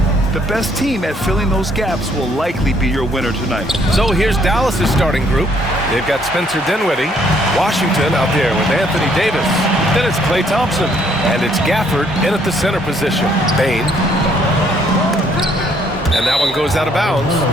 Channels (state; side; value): normal; both; correlation 0.66